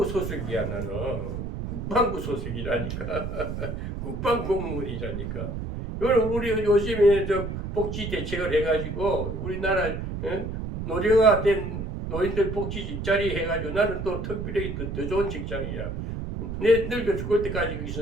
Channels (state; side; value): noise; right; rumble, 5 dB below the sound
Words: 소속이야 나는. 국방부 소속이라니까. 국방 공무원이라니까. 우리 요즘에 저 복지 대책을 해가지고 우리나라 노령화된 노인들 복지 일자리 해가지고 나는 또 특별히 더 좋은 직장이야. 내 늙어 죽을 때까지